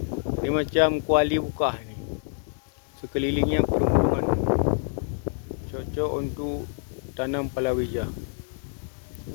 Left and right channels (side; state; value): right; silent; digital silence